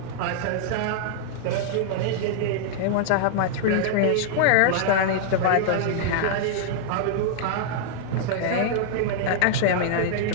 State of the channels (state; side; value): different; both; correlation -0.01